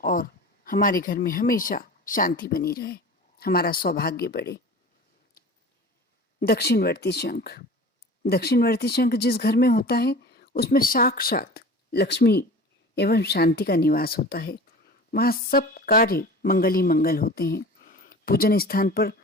और हमारे घर में हमेशा शांति बनी रहे, हमारा सौभाग्य बढ़े। दक्षिणवर्ती शंख। दक्षिणवर्ती शंख जिस घर में होता है उसमें साक्षात लक्ष्मी एवं शांति का निवास होता है। वहाँ सब कार्य मंगल ही मंगल होते हैं। पूजन स्थान पर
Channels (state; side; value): normal; both; correlation 0.38